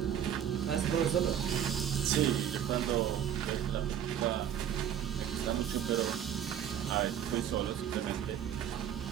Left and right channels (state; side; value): quieter; left; 9.8 dB